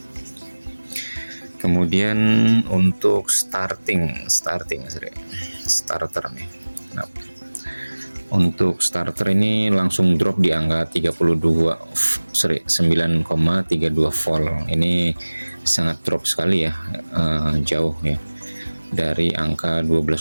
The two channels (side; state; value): both; inverted; correlation -1.00